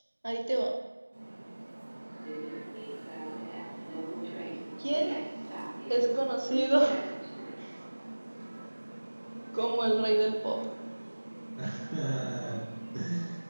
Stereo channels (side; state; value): both; inverted; correlation -1.00